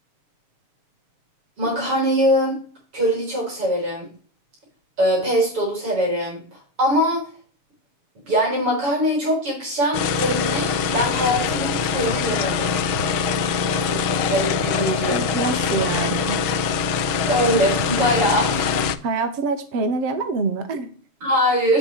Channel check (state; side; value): late; left; 6.3 ms